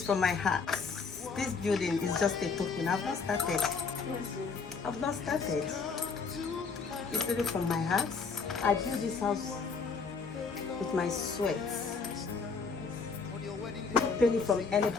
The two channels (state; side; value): quieter; right; 5.0 dB